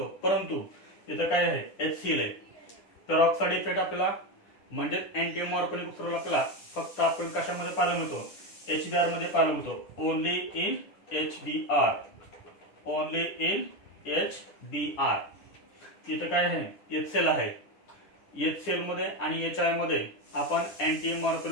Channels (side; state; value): right; late; 10 ms